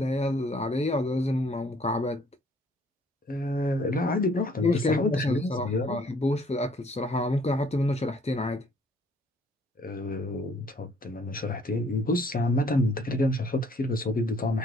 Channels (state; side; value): normal; both; correlation 0.61